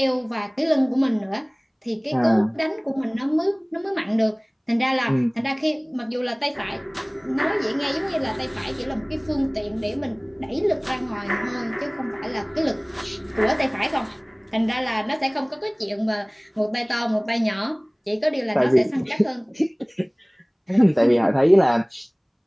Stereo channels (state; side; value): identical; both; correlation 1.00